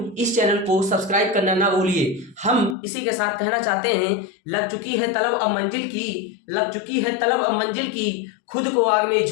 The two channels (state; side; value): drops out; right; at 2.8 s